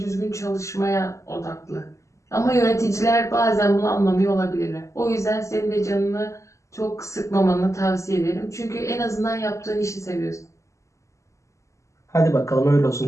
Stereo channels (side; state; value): right; late; 0.15 ms